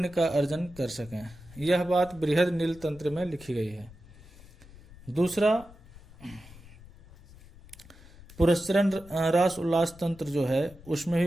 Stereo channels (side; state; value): left; noise; rumble, 21 dB below the sound